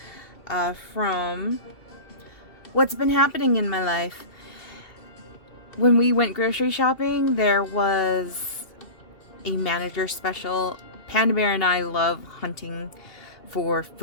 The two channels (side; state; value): right; late; 2.7 ms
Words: from what's been happening in my life. When we went grocery shopping, there was a manager special. Panda Bear and I love hunting for